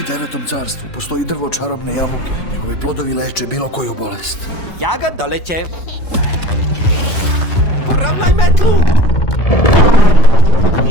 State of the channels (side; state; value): right; late; 3.8 ms